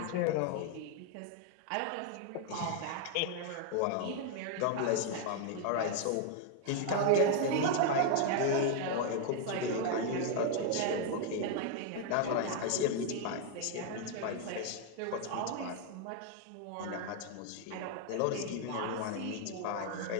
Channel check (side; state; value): both; different; correlation 0.00